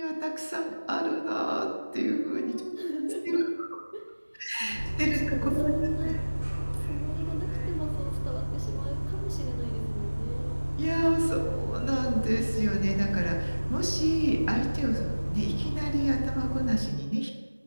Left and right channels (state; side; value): inverted; both; correlation -1.00